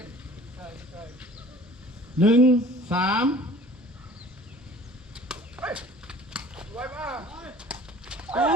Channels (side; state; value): both; normal; correlation 0.48